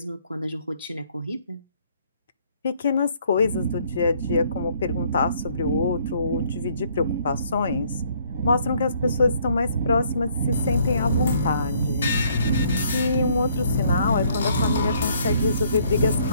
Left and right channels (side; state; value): both; inverted; correlation -0.65